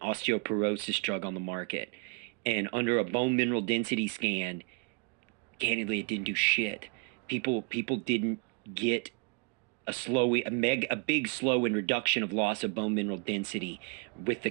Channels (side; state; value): left; quieter; 34.2 dB